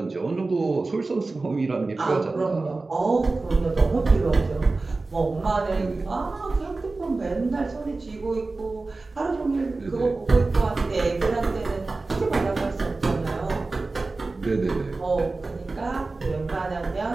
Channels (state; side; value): quieter; left; 3.5 dB